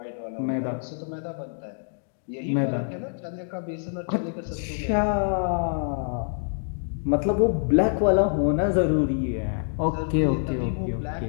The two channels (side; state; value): right; silent; digital silence